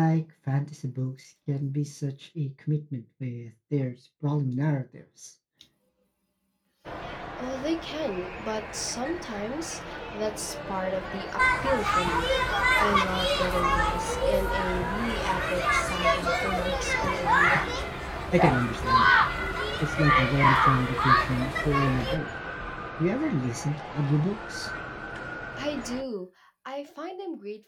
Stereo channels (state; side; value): identical; both; correlation 1.00